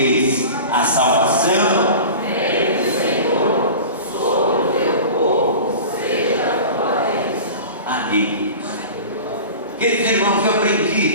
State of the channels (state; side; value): inverted; both; correlation -0.36